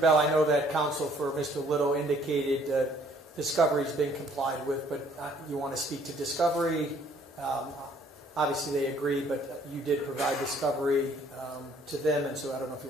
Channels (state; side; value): normal; both; correlation 0.61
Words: I know that counsel for Mr. Little indicated discovery has been complied with, but you want to speak to discovery. Obviously they agree, but you did provide discovery to them, and so I don't know if you